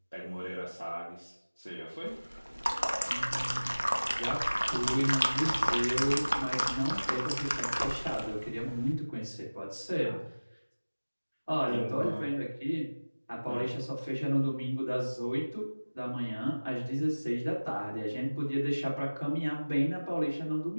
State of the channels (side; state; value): both; inverted; correlation -1.00